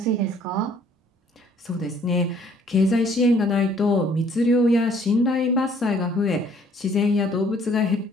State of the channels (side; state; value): both; normal; correlation 0.60